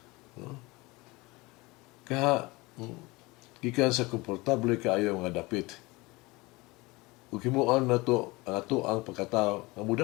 No? Gikan sa komportable kaayo nga dapit. Ug himuon nato ang ato ang pagkatao nga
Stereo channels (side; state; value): right; quieter; 23.1 dB